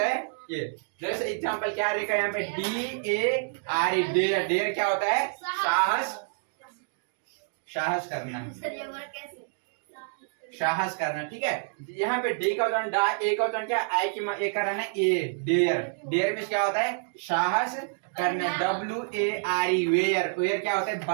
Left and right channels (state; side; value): silent; left; digital silence